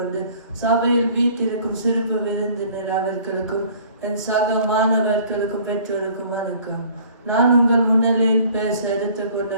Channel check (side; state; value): both; inverted; correlation -0.52